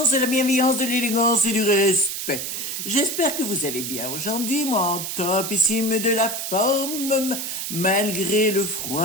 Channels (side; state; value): right; noise; hiss, 4 dB below the sound